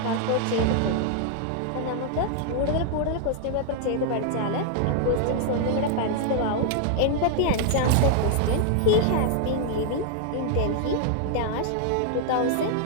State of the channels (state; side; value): different; both; correlation 0.00